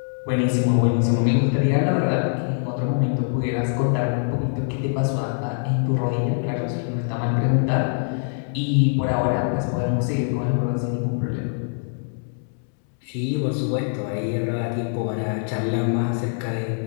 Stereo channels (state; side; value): silent; right; 63 dB below the other